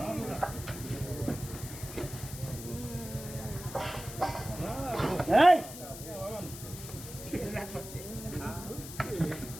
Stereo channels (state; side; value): noise; left; hiss, 12 dB below the sound